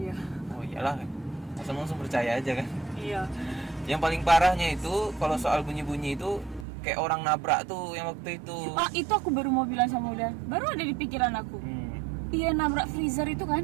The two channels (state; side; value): drops out; left; at 6.7 s